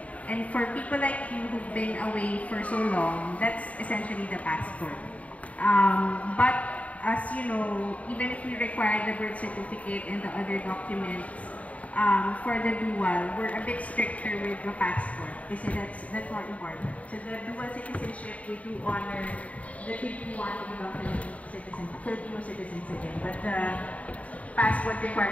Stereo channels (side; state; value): right; late; 0.068 ms